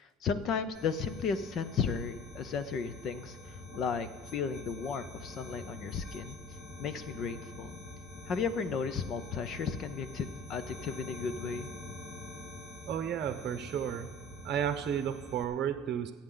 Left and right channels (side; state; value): both; normal; correlation 0.42